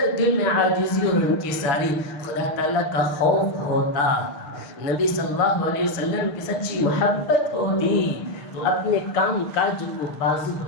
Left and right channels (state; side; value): late; right; 6.4 ms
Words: دل میں عاجزی اور انکساری، خدا تعالیٰ کا خوف ہوتا، نبی صلی اللہ علیہ وسلم کی سچی محبت ہوتی، تو اپنے کام کاج کو بازو